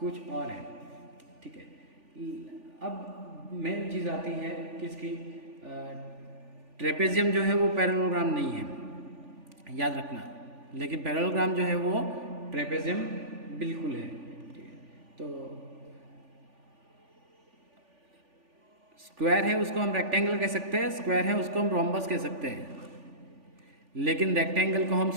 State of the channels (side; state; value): left; late; 3.4 ms